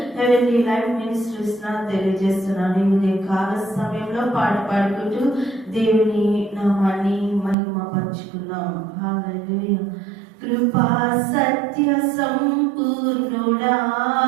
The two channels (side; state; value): left; drops out; at 7.6 s